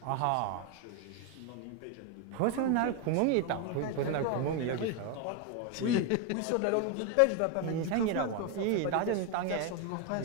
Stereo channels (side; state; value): both; different; correlation 0.01